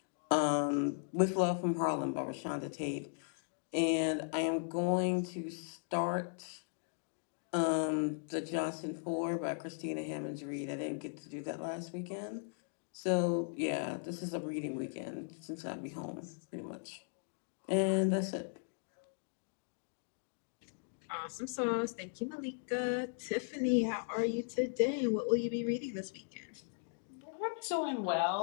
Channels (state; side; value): silent; right; digital silence